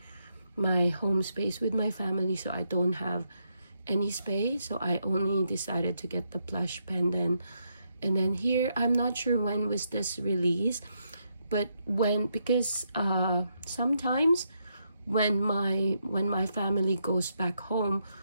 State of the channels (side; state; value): both; inverted; correlation -0.79